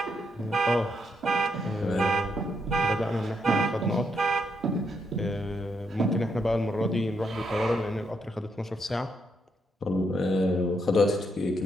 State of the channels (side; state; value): both; normal; correlation 0.78